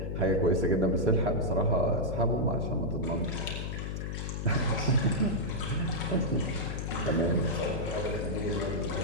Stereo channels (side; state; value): left; noise; hum, 4 dB below the sound